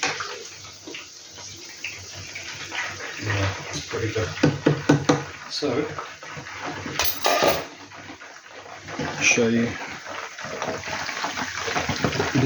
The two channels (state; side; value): identical; both; correlation 1.00